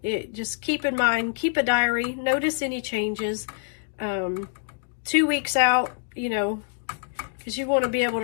just keep in mind, keep a diary, notice any changes. 2 weeks out, you know, because you want to be able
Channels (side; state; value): right; silent; 61 dB below the other